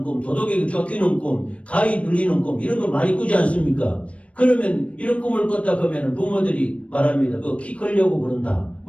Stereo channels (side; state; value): right; late; 0.063 ms